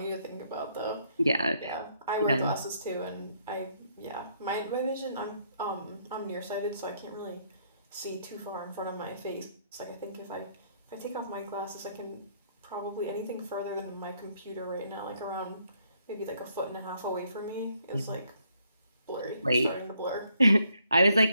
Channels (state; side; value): inverted; both; correlation -0.70